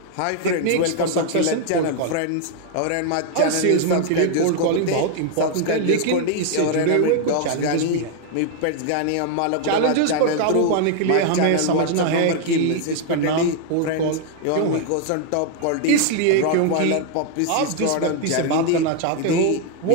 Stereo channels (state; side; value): different; both; correlation 0.00